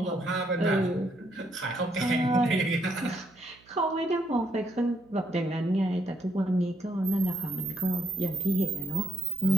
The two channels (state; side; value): noise; right; hum, 29 dB below the sound